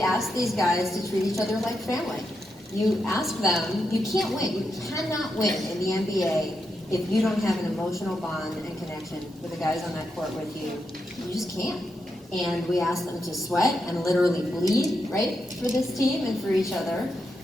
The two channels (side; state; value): both; normal; correlation 0.85